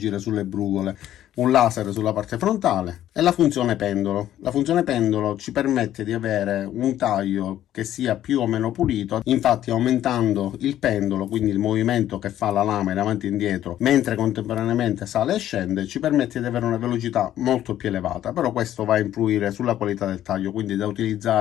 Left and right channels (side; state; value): right; quieter; 12.2 dB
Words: sulle brugole, un laser sulla parte frontale e la funzione pendolo. La funzione pendolo ci permette di avere un taglio che sia più o meno pulito, infatti aumentando il pendolo, quindi il movimento che fa la lama in avanti e indietro mentre contemporaneamente sale e scende, ci permette di avere una velocità molto più elevata. Però questo va a influire sulla qualità del taglio, quindi da